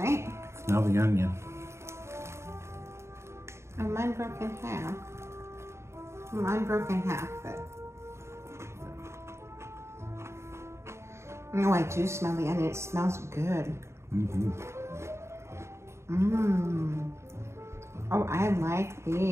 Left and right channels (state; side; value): late; left; 0.13 ms